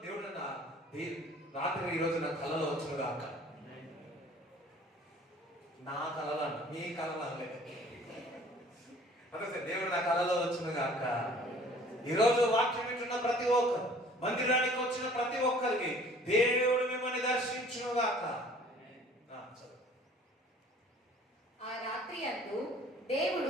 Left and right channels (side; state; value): both; normal; correlation 0.52